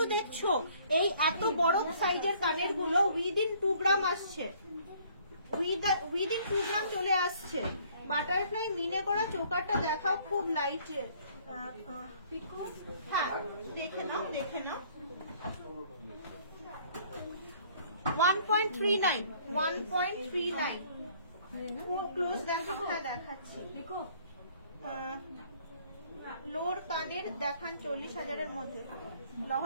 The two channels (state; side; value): inverted; both; correlation -0.59